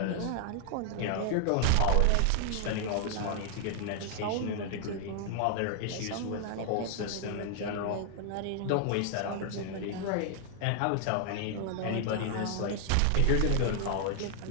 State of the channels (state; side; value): different; both; correlation 0.00